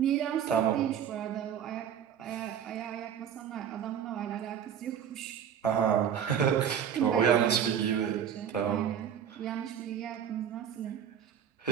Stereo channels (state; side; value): quieter; left; 8.7 dB